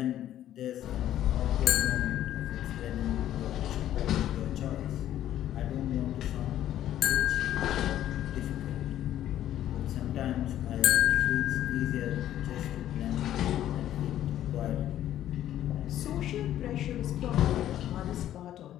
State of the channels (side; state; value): right; quieter; 12.1 dB